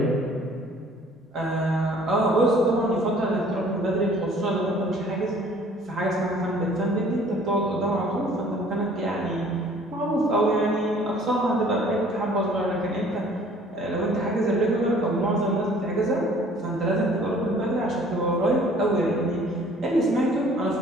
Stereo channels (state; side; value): normal; both; correlation 0.54